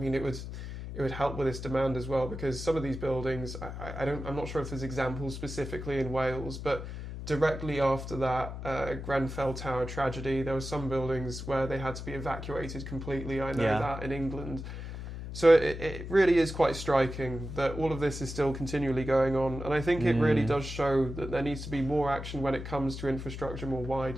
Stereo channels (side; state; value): left; noise; hum, 8 dB below the sound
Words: it it would help with this demand as well, because some of these buildings, I'm not sure if there's examples specifically in Wales, but directly after that Grenfell Tower tragedy, there were some buildings where they had to be evacuated completely. I know that in England. So it really is quite striking that all of this is still continually going on. And I think it really does show that there needs to be more action when it comes to infrastructure more